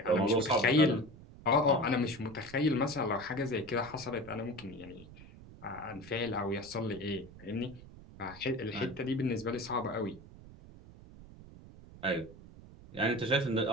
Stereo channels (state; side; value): noise; right; rumble, 18 dB below the sound